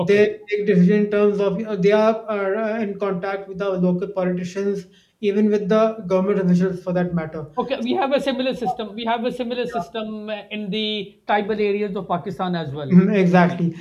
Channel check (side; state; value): both; identical; correlation 1.00